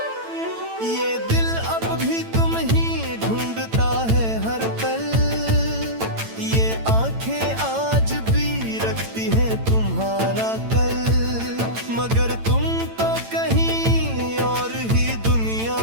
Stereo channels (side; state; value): left; late; 8.9 ms